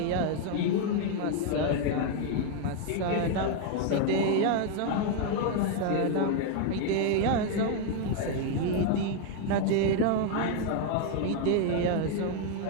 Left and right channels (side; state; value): both; different; correlation 0.00